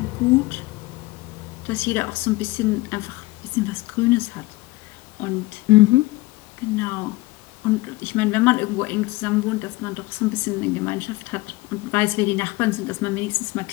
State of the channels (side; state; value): right; quieter; 20.9 dB